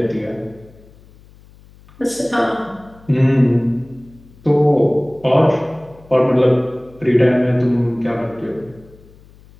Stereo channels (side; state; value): left; noise; hum, 25 dB below the sound